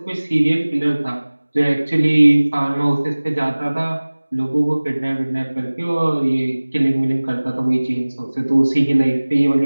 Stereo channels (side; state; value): both; inverted; correlation -1.00